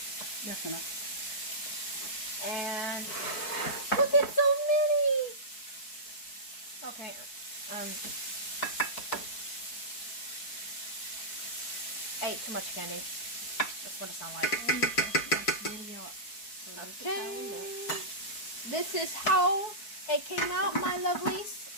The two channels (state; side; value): late; right; 4.6 ms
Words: That's enough. And look at so many. Okay. I ate too much candy. That's what it sounds like. Okay. This is how it came out, my lovelies.